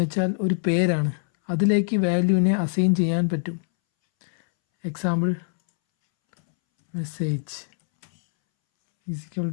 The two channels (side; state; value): right; silent; 63 dB below the other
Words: വെച്ചാൽ ഒരു പേരാണ്, അതിലേക്ക് വാല്യൂവിനെ അസൈൻ ചെയ്യാൻ പറ്റും. Example message =